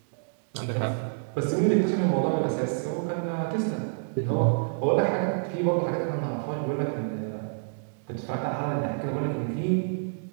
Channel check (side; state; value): left; silent; digital silence